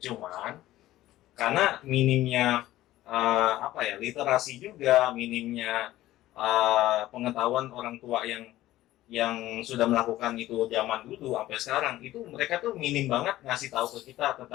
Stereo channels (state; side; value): quieter; right; 15.3 dB